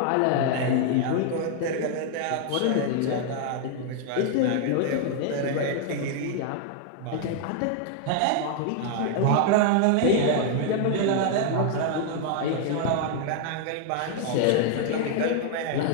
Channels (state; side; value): different; both; correlation 0.00